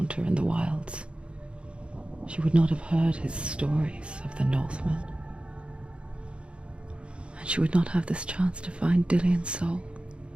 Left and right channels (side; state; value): left; late; 0.057 ms